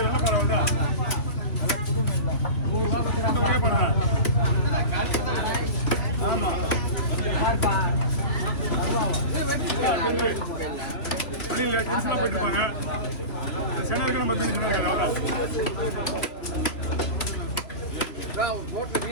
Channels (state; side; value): late; right; 2.8 ms